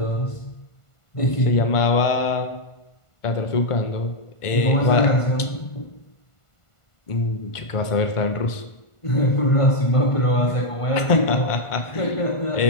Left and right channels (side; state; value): right; late; 1.5 ms